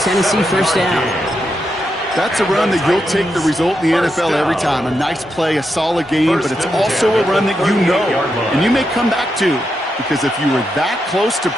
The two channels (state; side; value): normal; both; correlation 0.84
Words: first down. That's a run that you'll take the result in the NFL every time. A nice play, a solid game, but it's also a run that you know, and you may come back to, because if you were that close to